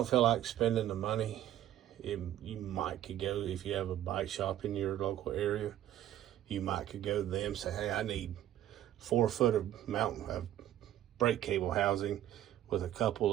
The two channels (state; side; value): quieter; left; 12.3 dB